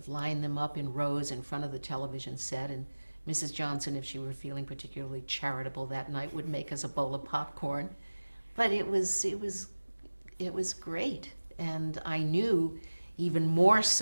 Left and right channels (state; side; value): inverted; both; correlation -1.00